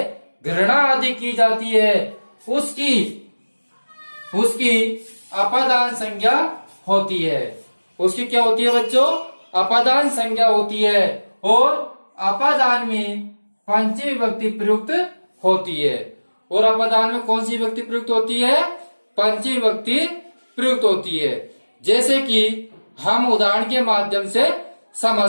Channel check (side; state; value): both; inverted; correlation -1.00